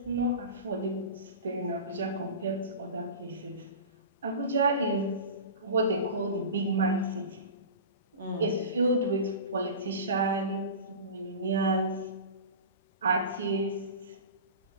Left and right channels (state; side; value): inverted; both; correlation -0.31